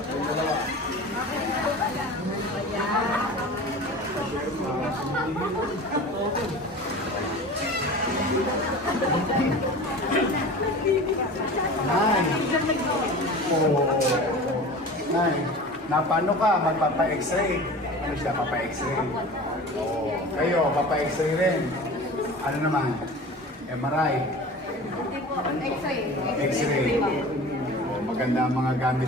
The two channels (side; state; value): both; normal; correlation 0.37